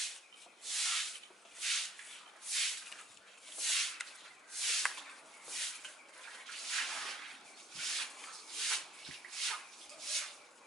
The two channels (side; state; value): both; normal; correlation 0.63